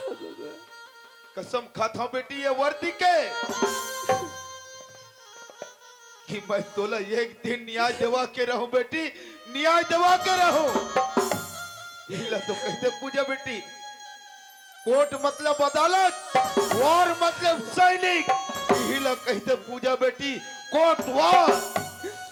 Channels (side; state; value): both; identical; correlation 1.00